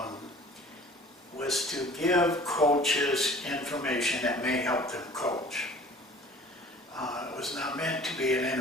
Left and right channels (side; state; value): both; normal; correlation 0.48